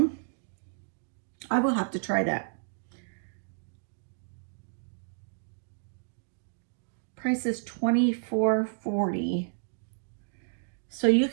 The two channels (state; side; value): silent; left; digital silence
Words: I will have to try that. Price is $24.40. So you